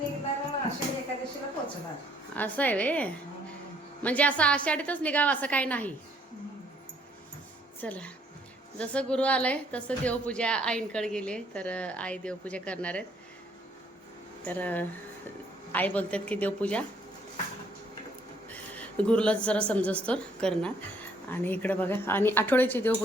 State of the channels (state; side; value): normal; both; correlation 0.65